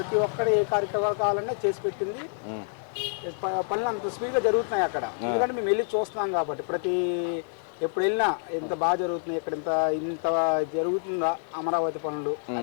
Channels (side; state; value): right; silent; digital silence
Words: ఒక్కరు ఏ కార్యక్రమాలు కావాలన్నా చేసి పెట్టింది. పనులు అంత స్పీడ్గా జరుగుతున్నాయి అక్కడ, ఎందుకంటే మేము వెళ్ళి చూస్తున్నాం కాబట్టి. ఎప్పుడు వెళ్ళినా ఎంత బాగా జరుగుతున్నాయి, ఇక్కడ ఇంత జరుగుతుందా అమరావతి పనులు